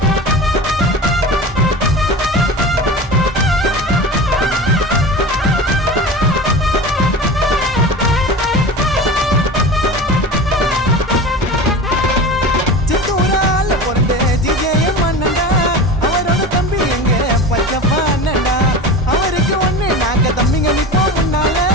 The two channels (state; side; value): normal; both; correlation 0.31